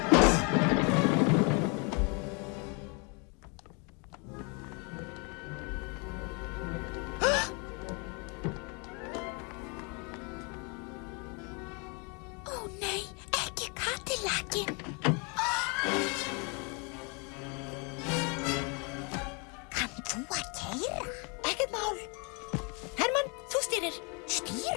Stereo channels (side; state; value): right; quieter; 33.0 dB